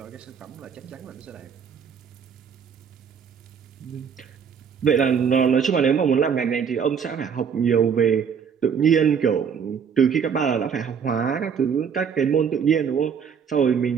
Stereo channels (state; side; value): quieter; left; 7.0 dB